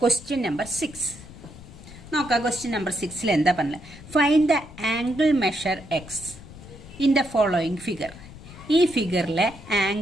ക്വസ്റ്റ്യൻ നമ്പർ 6 നോക്കാം. ക്വസ്റ്റ്യൻ നമ്പർ 6 എന്താ പറഞ്ഞത്? Find the angle measure X in the following figure. ഈ ഫിഗറിലെ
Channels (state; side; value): noise; left; rumble, 17 dB below the sound